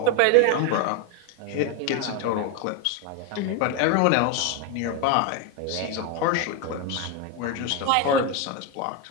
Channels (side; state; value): both; different; correlation 0.02